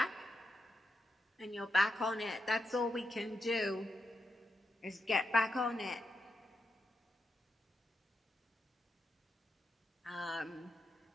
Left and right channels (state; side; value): normal; both; correlation 0.86